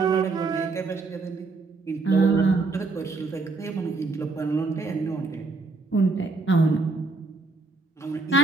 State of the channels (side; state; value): left; quieter; 3.8 dB